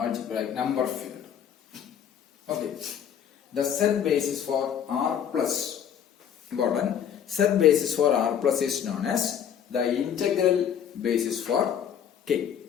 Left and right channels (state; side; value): quieter; right; 8.8 dB